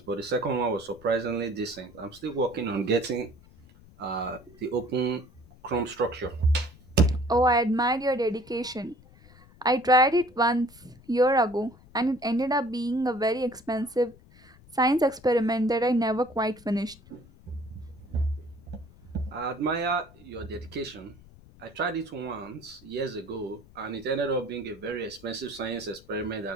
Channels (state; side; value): noise; left; rumble, 24 dB below the sound